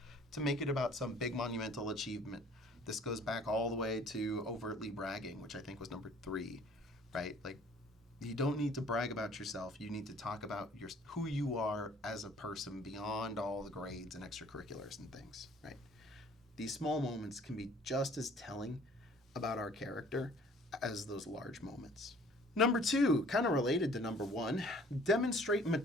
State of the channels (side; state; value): both; normal; correlation 0.54